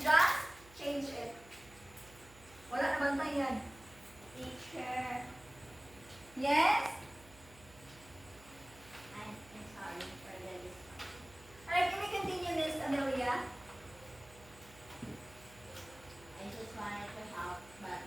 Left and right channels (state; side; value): noise; right; hum, 22 dB below the sound